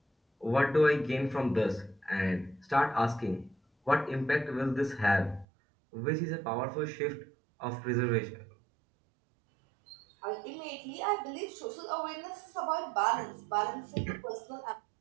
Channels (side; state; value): left; drops out; at 5.5 s